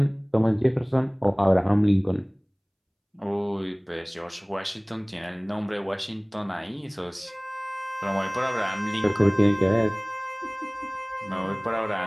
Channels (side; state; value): both; identical; correlation 1.00